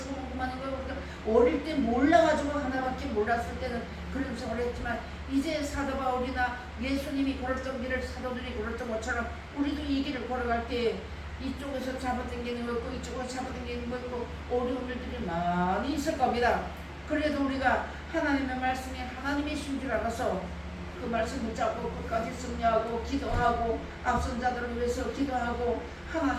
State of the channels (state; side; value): identical; both; correlation 1.00